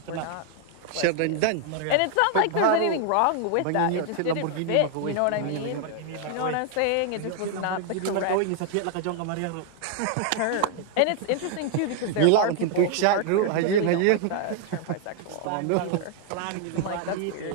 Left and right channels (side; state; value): both; different; correlation 0.00